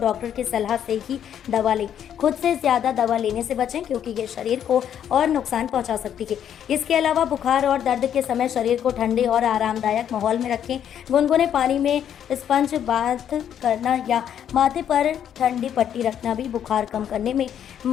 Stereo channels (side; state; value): right; quieter; 9.5 dB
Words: की सलाह से ही दवा लें। खुद से ज़्यादा दवा लेने से बचें क्योंकि ये शरीर को और नुकसान पहुंचा सकती है। इसके अलावा बुखार और दर्द के समय शरीर को ठंडे और आरामदायक माहौल में रखें। गुनगुने पानी में स्पंज बाथ करना या माथे पर ठंडी पट्टी रखना भी बुखार कम करने में